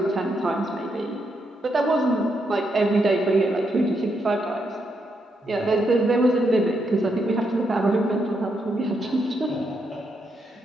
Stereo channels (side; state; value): both; normal; correlation 0.79